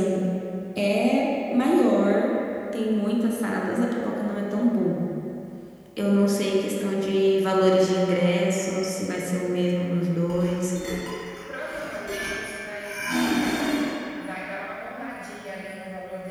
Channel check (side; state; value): both; identical; correlation 1.00